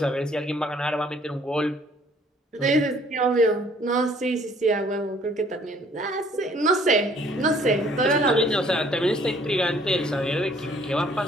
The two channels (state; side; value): normal; both; correlation 0.59